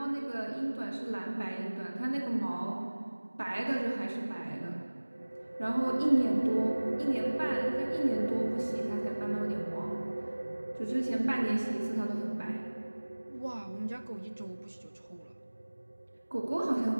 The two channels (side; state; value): both; inverted; correlation -1.00